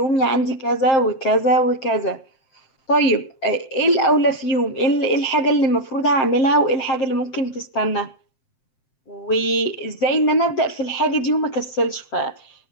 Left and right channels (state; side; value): late; right; 7.7 ms